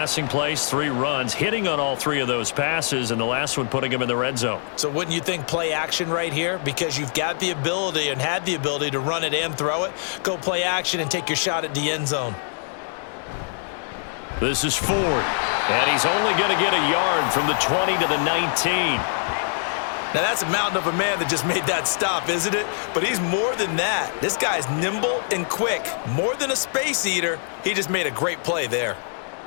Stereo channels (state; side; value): silent; right; 61 dB below the other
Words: plays, 3 runs, hitting on all 3 of those passes, and the last one putting him in the red zone. So wouldn't you think play action right here? Because you've got the ability and had the ability to run it and throw it. Go play action and take your shot at the end zone. This is Ford, and he's only going to get a yard from the 20 to the 19. Now, that's a mountain of a man that just made that stop, isn't it? But he's more than that. This guy's nimble and quick. More than a space eater, he just made a great play there.